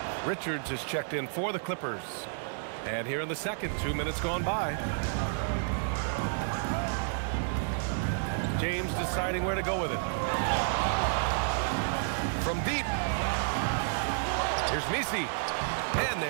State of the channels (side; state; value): left; silent; digital silence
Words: Richards is checked in for the Clippers. And here in the second, 2 minutes gone by. James deciding where to go with it. from deep. Here's Misi. And